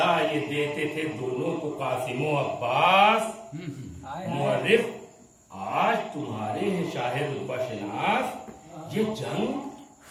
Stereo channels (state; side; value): identical; both; correlation 1.00